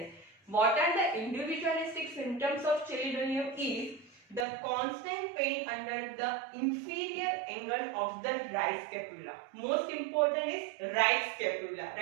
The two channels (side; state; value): left; drops out; at 4.5 s